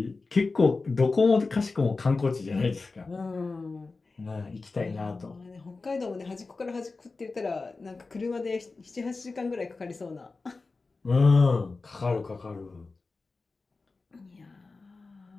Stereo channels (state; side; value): quieter; right; 3.9 dB